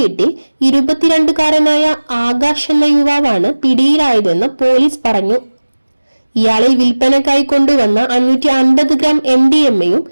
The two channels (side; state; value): both; inverted; correlation -1.00